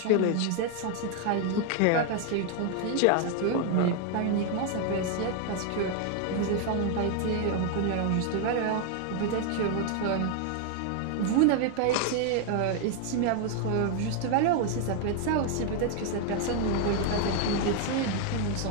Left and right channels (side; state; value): both; different; correlation 0.00